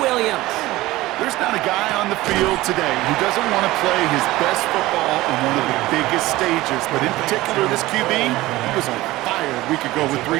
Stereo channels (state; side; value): quieter; left; 18.0 dB